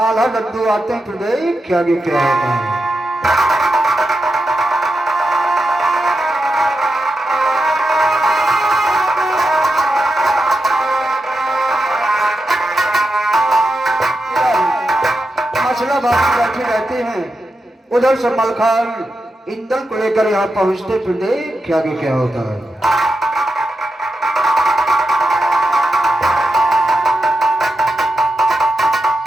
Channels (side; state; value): both; normal; correlation 0.88